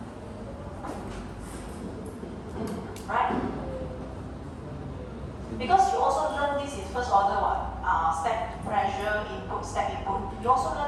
Right? Because you also learn this in first order step pressure input, step input. You also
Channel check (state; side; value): identical; both; correlation 1.00